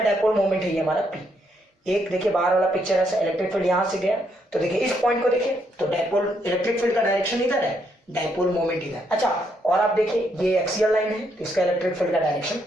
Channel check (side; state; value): both; normal; correlation 0.75